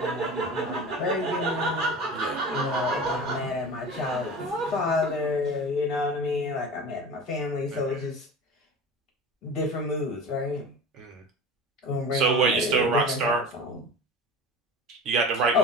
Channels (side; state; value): both; normal; correlation 0.34